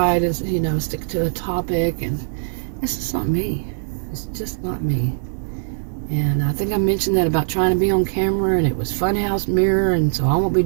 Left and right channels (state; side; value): silent; left; digital silence